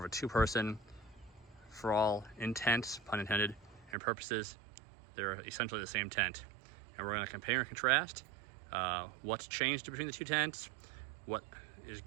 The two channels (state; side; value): drops out; left; at 4.0 s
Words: a 2-person. For all intents, pun intended, and purposes, they're essentially the same tent. And we're going to compare and contrast what's changed between the two tents, what is